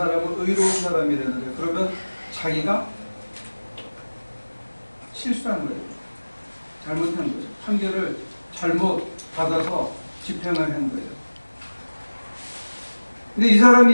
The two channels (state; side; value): inverted; both; correlation -1.00